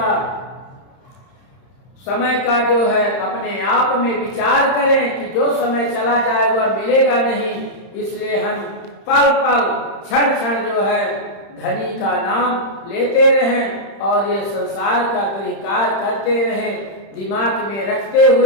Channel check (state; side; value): late; right; 31 ms